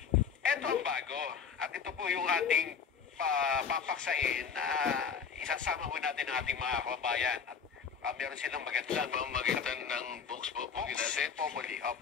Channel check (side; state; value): right; quieter; 6.6 dB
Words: Ito ang bago. At ito po yung ating papaksain na isasama ho natin ang ating mga kababayan. At meron silang magandang Pamagitan ng Vox Populi natin. Populi,